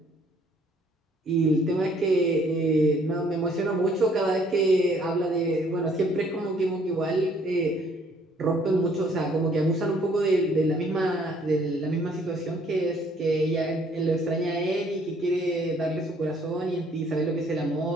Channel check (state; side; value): normal; both; correlation 0.62